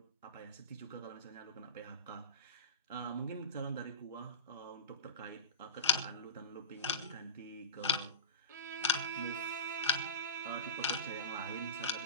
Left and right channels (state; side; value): inverted; both; correlation -0.31